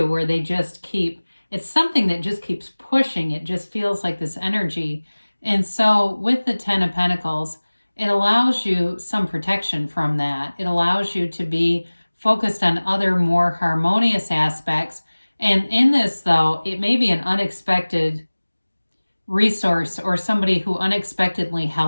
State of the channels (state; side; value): inverted; both; correlation -1.00